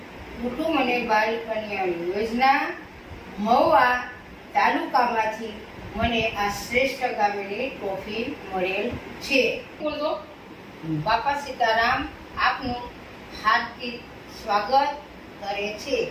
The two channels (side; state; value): both; identical; correlation 1.00